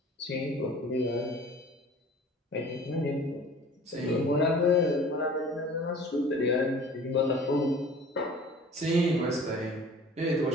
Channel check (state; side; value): normal; both; correlation 0.45